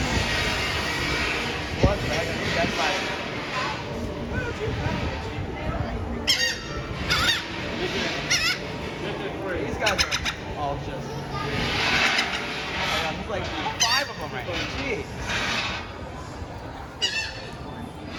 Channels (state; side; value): identical; both; correlation 1.00